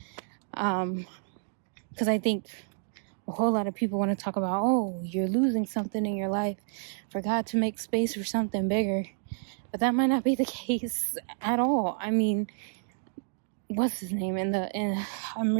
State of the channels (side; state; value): left; silent; 58 dB below the other